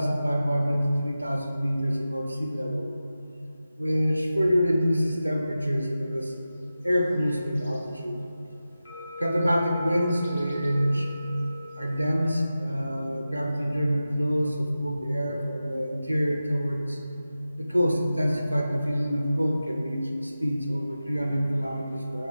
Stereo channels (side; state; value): both; inverted; correlation -0.93